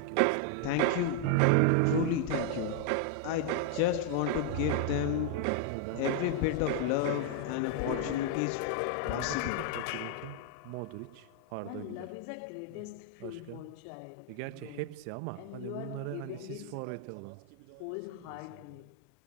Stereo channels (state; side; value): different; both; correlation 0.00